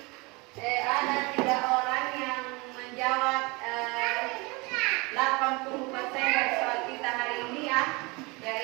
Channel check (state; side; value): quieter; left; 26.1 dB